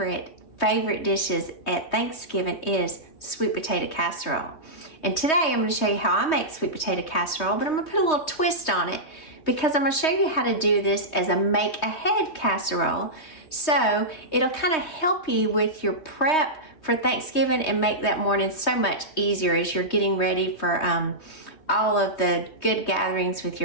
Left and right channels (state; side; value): late; right; 3.2 ms